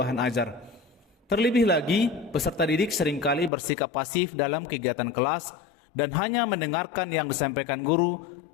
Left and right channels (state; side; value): drops out; right; at 3.5 s